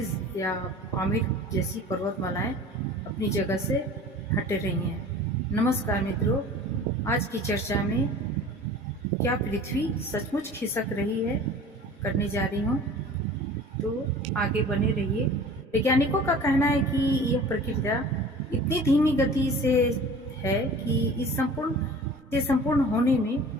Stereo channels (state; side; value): normal; both; correlation 0.42